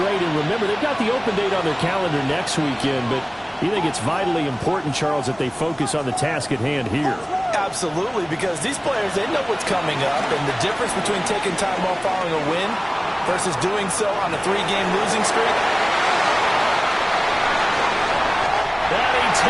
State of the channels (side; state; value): both; identical; correlation 1.00